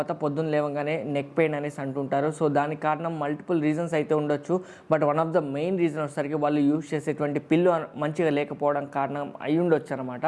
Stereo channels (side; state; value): both; identical; correlation 1.00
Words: పొద్దున్న లేవగానే నెక్ పెయిన్ అనేసి అంటుంటారు. సో దానికి కారణం మల్టిపుల్ రీజన్స్ అయితే ఉండొచ్చు. But one of the main reason వచ్చేసరికి వాళ్ళు యూజ్ చేసేటువంటి పిల్లో మంచిగా లేకపోవడం కారణం అయి ఉండొచ్చు